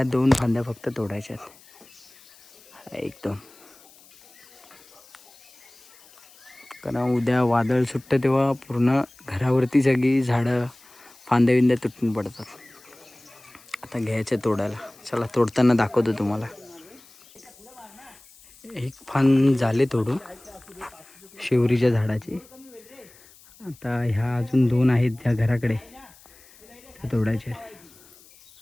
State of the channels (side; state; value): left; noise; hiss, 25 dB below the sound